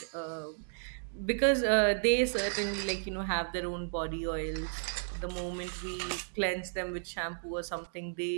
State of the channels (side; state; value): left; silent; digital silence